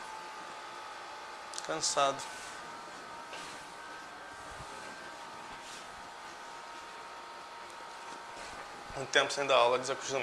Cansado. Um tempo sem dar aula,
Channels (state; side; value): identical; both; correlation 1.00